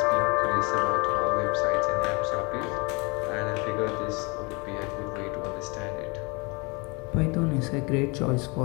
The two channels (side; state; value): right; quieter; 28.8 dB